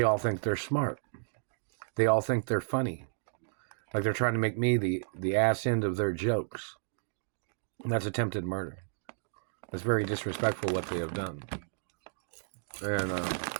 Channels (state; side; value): silent; left; digital silence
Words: all think they're smart. They all think they're funny. Like they're trying to make me the ass end of their jokes. And that's attempted murder. That's very disrespectful what they have done. And